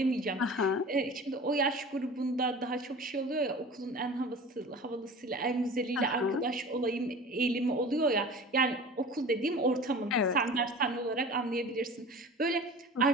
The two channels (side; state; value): both; normal; correlation 0.38